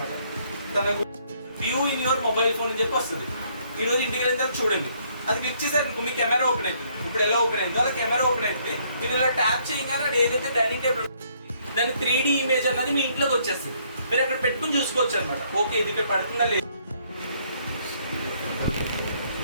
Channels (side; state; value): both; inverted; correlation -0.67